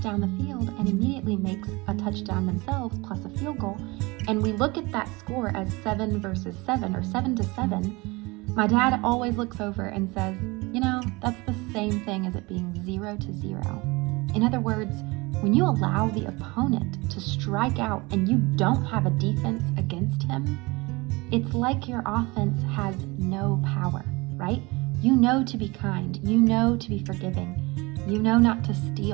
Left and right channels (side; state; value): left; quieter; 24.3 dB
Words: down the field and immediately makes a touchdown themselves plus a field goal, and we look at that score as 7 versus 7 or 7-7, my dad always looks over and says, that's the same thing as it being 0-0. In other words, when you allow the opponent to strike out and you don't have a defense against him, it's like your offense has no power, right? You know to be kind. You know to be forgiving. You know not to